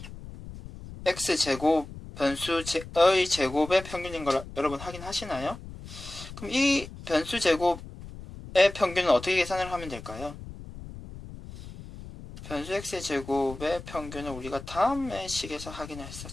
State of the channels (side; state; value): left; noise; rumble, 13 dB below the sound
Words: x제곱 변수의 제곱의 평균인 걸 여러분 확인하시나요? 그럼 이 변수 제곱의 평균은 어떻게 계산을 하면 될까요? 변수 x의 제곱의 평균은 우리가 다음의 식에서 확인을